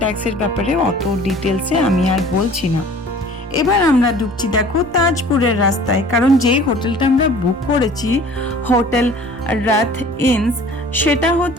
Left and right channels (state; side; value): normal; both; correlation 0.48